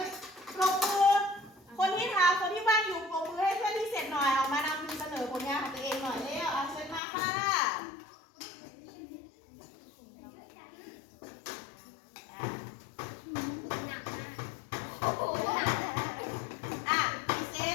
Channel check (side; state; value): right; drops out; at 7.0 s